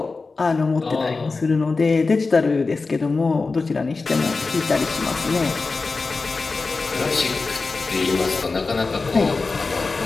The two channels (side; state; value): right; quieter; 4.0 dB